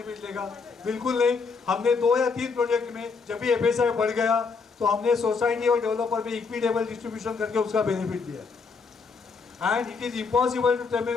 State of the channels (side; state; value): right; quieter; 4.9 dB